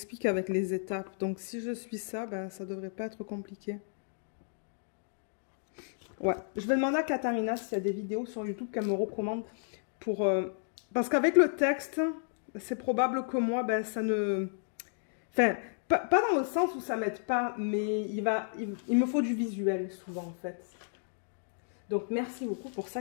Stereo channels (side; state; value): right; silent; digital silence